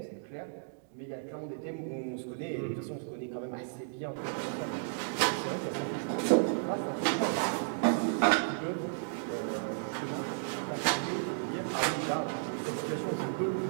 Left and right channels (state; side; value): silent; left; digital silence